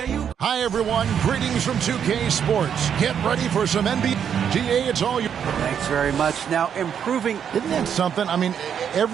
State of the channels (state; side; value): quieter; left; 8.2 dB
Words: Hi, everyone. Greetings from 2K Sports. Get ready for some NBA. GA, it's all you. Thanks very much. Now, improving. Isn't that something? I mean,